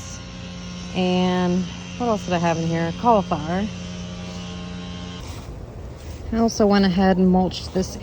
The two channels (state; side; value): identical; both; correlation 1.00